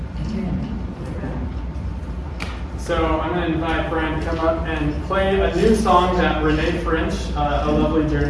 Amen. So I'm going to invite Bryan to come up and play a new song that Renee French, a lovely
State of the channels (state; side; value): identical; both; correlation 1.00